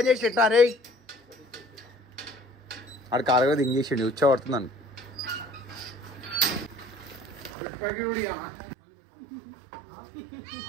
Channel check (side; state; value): left; drops out; at 7.5 s